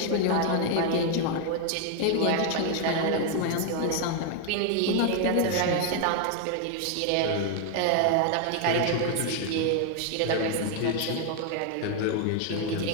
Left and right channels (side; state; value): both; different; correlation 0.00